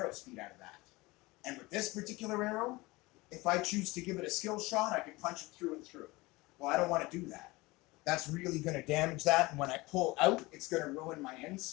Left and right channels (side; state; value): right; quieter; 22.1 dB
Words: speed out of that. And with this particular arrow, if I choose to give it a skill shot, I can punch it through and through. Well, I don't want to do that. That's really going to damage that, and when I pull out, it's going to ruin my